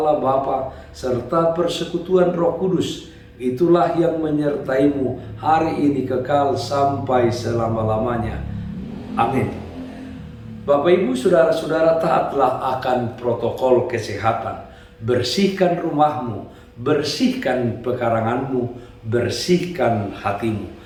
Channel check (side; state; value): both; identical; correlation 1.00